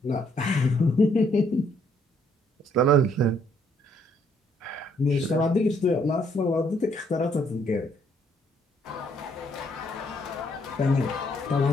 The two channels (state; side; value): normal; both; correlation 0.68